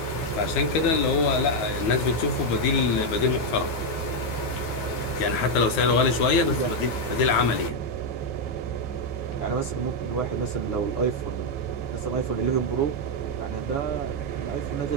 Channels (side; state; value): right; late; 9.5 ms